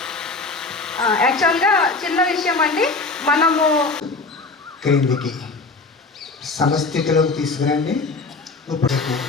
యాక్చువల్గా చిన్న విషయం అండి, మనము క్రిందికి సమస్థితిలోకి తీసుకురండి. ఇప్పుడు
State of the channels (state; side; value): quieter; right; 3.7 dB